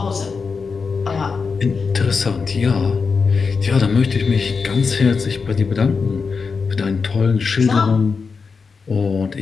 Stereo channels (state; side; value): quieter; right; 5.1 dB